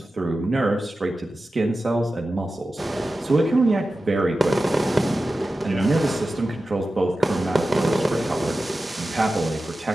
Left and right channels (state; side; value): normal; both; correlation 0.94